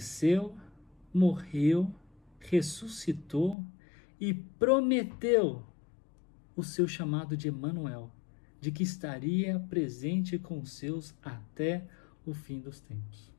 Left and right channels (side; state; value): right; drops out; at 3.6 s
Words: morreu, ressuscitou e prometeu o seu chamado de Emanuel, de que estaria presente com os seus até o fim dos tempos.